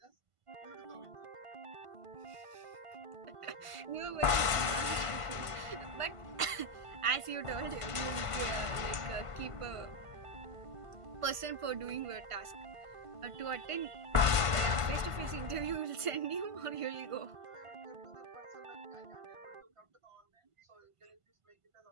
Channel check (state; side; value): late; left; 1.5 ms